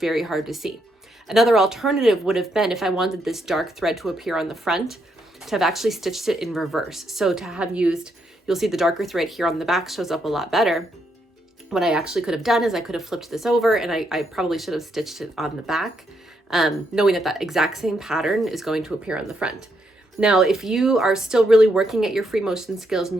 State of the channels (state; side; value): normal; both; correlation 0.78